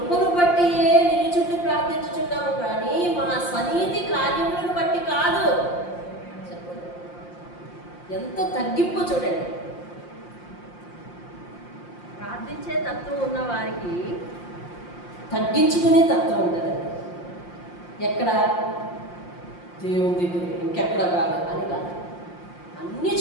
బట్టి నిలుచుండి ప్రార్థించుచున్నాము కానీ మా స్వనీతి కార్యములను బట్టి కాదు. ఎంత తగ్గింపు చూడండి. ప్రార్థించే తత్వం ఉన్న వారికి తగ్గించుకునే తత్వం ఉంటుందండి. ఎక్కడ? దేవుని దగ్గర, ఇంకెక్కడ కాదు అని కాదు, అన్ని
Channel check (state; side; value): late; right; 5.7 ms